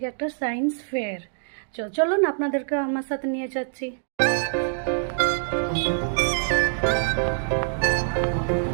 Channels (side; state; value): left; silent; digital silence